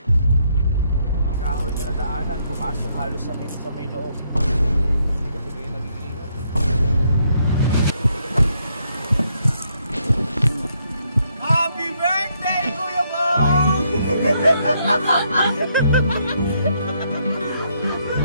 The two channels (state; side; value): inverted; both; correlation -0.73